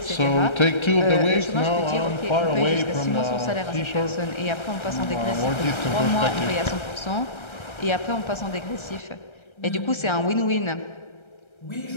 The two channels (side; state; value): right; late; 1.3 ms